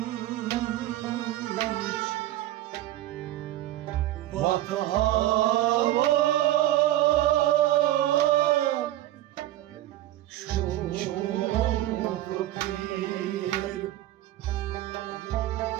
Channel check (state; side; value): quieter; left; 14.5 dB